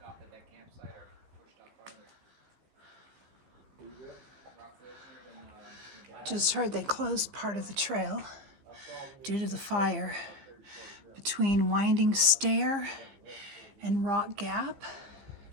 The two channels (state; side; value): late; left; 15 ms